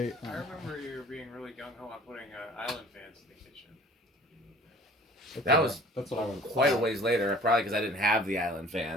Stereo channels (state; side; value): normal; both; correlation 0.48